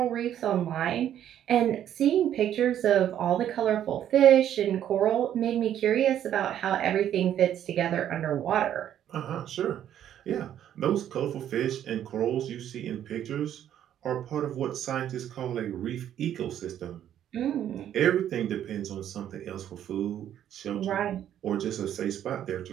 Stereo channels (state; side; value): quieter; left; 10.6 dB